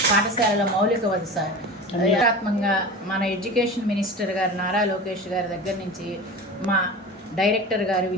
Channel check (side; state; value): both; normal; correlation 0.32